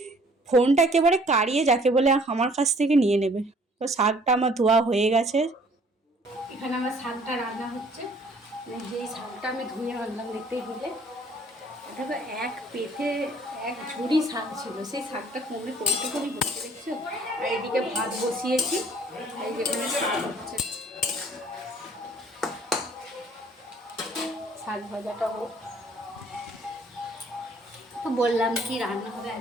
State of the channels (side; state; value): both; normal; correlation 0.57